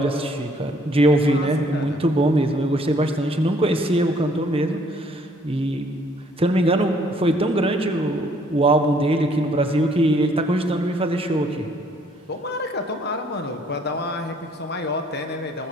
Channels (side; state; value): both; normal; correlation 0.63